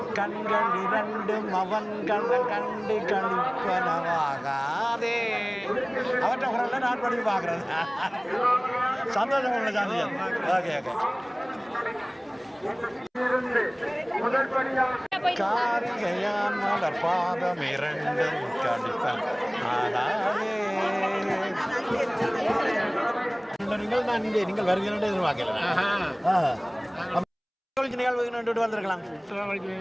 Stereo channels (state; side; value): identical; both; correlation 1.00